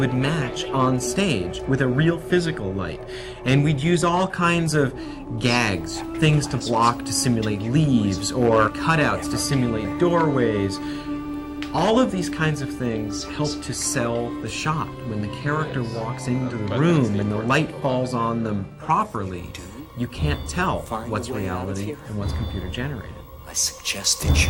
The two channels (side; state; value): both; identical; correlation 1.00